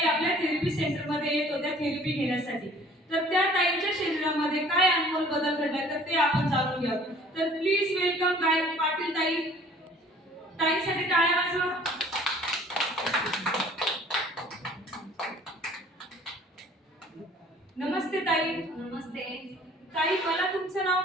आपल्या थेरपी सेंटर मध्ये येत होत्या थेरपी घेण्यासाठी। तर त्या ताईच्या शरीरामध्ये काय अनमोल बदल घडलाय तर ते आपण जाणून घेऊ। तर प्लीज वेलकम गायत्री पाटील ताई। ताईसाठी टाळ्या वाजवा। नमस्ते ताई। नमस्ते ताई, मला तुमचं नाव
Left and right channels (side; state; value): both; normal; correlation 0.52